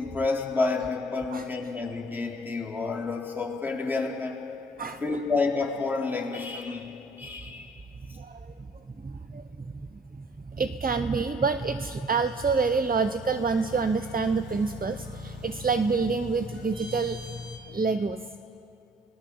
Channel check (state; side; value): normal; both; correlation 0.57